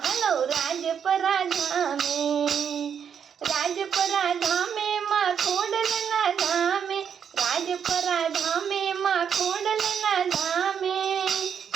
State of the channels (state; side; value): quieter; left; 7.7 dB